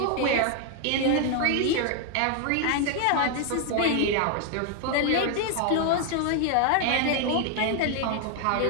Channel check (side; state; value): both; different; correlation 0.00